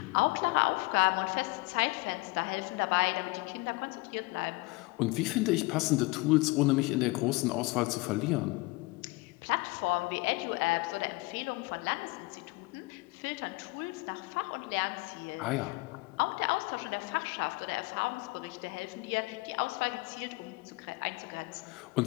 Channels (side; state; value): right; quieter; 24.0 dB